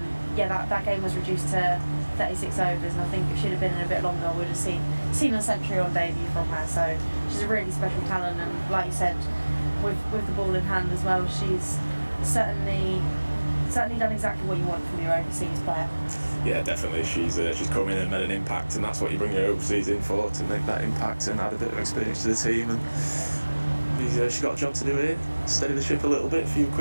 game was reduced to 36 overs, and I think if she'd have been in a bit longer, we'd have seen a century on debut from her. So she's a really special talent, and like you said, with the ball in hand as well, she's certainly done exactly what you want from your overseas player. Yeah, definitely. She's come in and made an impact, and that's what you bring your overseas in for, to make that impact and add a bit of experience to the team. And she's got a job to do here, steady the ship a little bit, a few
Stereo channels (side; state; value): both; inverted; correlation -1.00